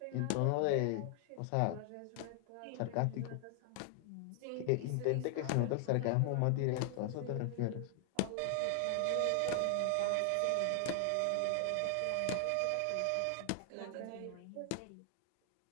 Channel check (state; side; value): different; both; correlation 0.00